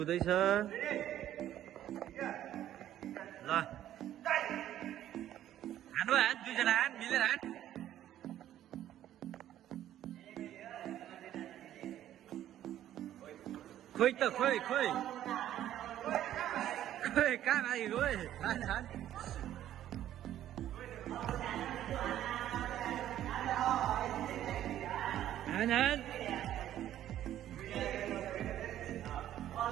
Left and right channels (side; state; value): left; quieter; 12.0 dB